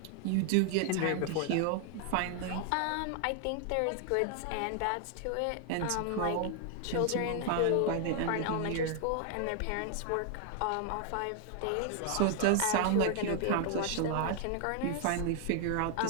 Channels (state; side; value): different; both; correlation 0.00